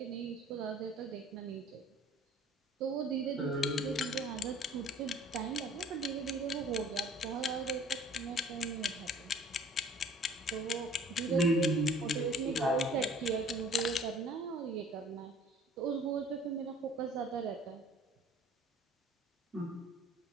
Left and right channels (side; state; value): both; normal; correlation 0.51